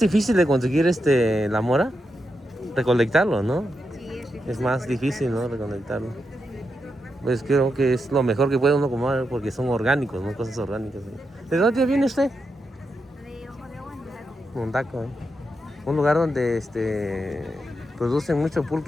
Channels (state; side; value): normal; both; correlation 0.85